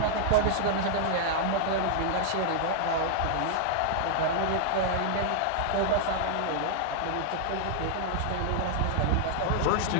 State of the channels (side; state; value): both; different; correlation -0.01